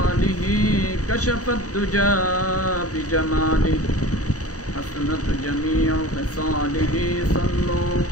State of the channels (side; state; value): right; late; 0.66 ms